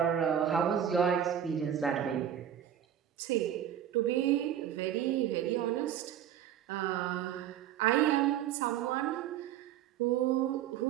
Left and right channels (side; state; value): left; quieter; 10.1 dB